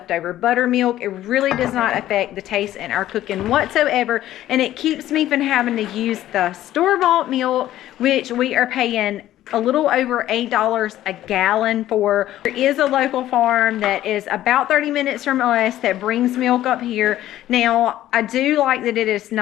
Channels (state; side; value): quieter; right; 13.5 dB